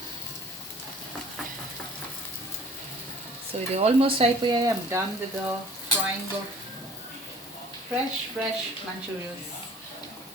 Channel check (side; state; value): both; normal; correlation 0.50